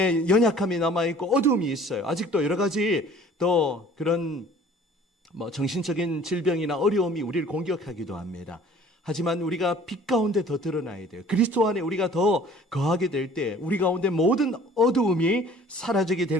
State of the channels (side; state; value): both; normal; correlation 0.50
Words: 연약함이 남아있고 어두움이 있어요. 아직도 여러 가지 또 그런 정신적인 질병이나 어려움이 우리를 공격하기도 합니다. 하지만 우리가 빛 가운데 더 드러나야 돼요. 그리스도 안에 우리가 더 거하게 될 때 우리 가운데 모든 어두움이 사라지게